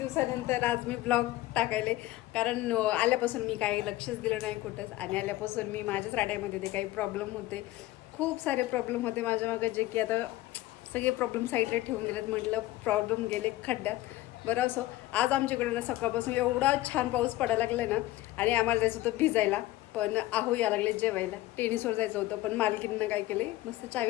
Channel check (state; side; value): quieter; right; 16.9 dB